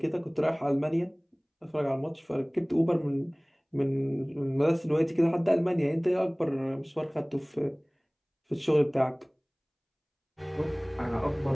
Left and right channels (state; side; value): identical; both; correlation 1.00